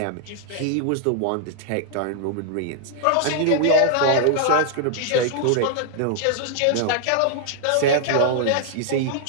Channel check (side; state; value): both; different; correlation -0.01